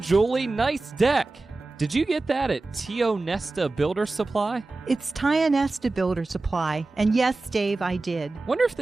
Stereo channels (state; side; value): quieter; left; 3.3 dB